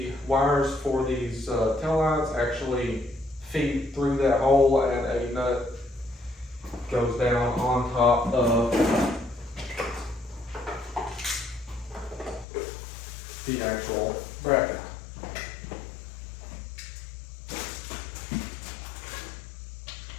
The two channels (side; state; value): right; drops out; at 12.5 s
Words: wires for these tail lights actually feed through that hole, and a nut goes down on top of the actual bracket.